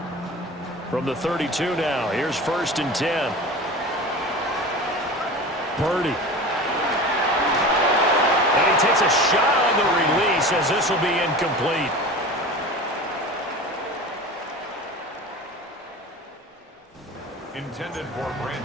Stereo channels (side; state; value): both; normal; correlation 0.34